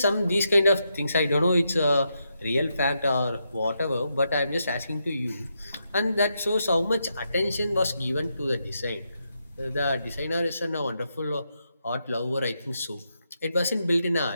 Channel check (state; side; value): inverted; both; correlation -0.83